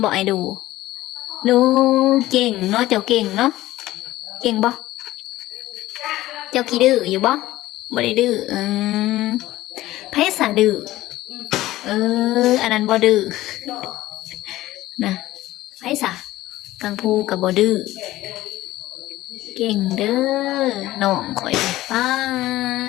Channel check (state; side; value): quieter; right; 16.2 dB